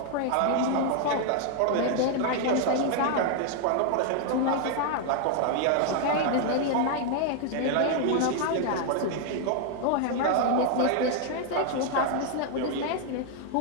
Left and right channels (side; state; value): both; different; correlation 0.00